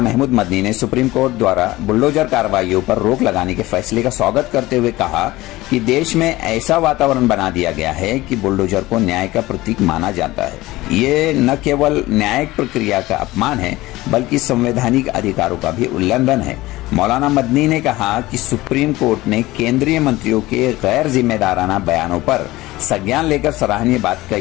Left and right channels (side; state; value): right; quieter; 18.5 dB